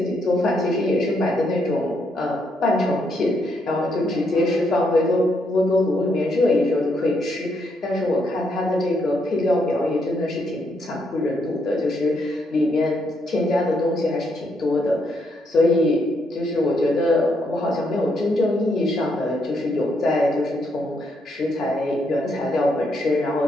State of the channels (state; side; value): normal; both; correlation 0.76